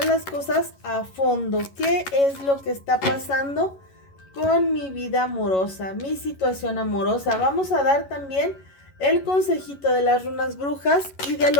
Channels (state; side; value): late; right; 11 ms